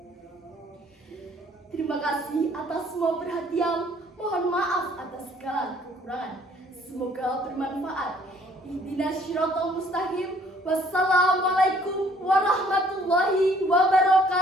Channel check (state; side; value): normal; both; correlation 0.60